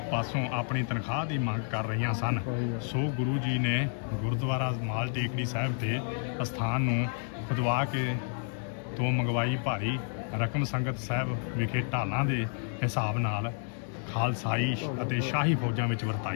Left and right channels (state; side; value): silent; right; 58 dB below the other